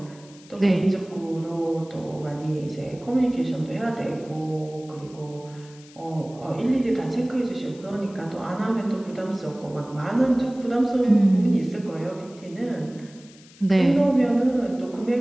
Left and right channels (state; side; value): noise; left; hiss, 24 dB below the sound